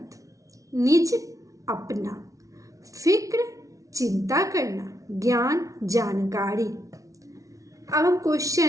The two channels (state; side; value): late; left; 0.16 ms